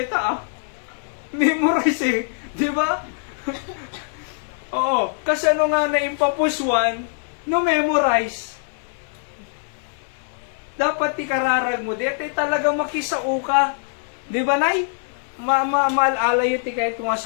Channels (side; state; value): right; silent; 64 dB below the other